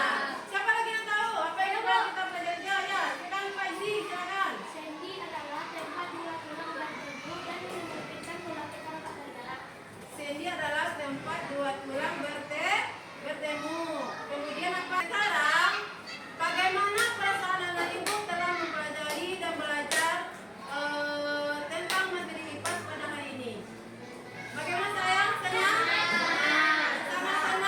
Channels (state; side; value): identical; both; correlation 1.00